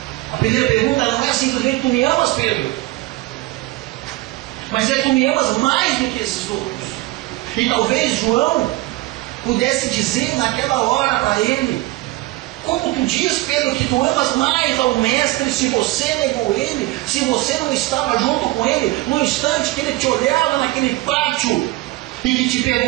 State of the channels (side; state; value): left; quieter; 19.3 dB